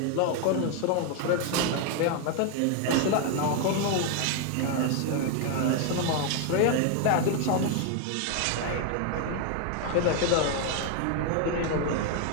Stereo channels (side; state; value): both; different; correlation 0.00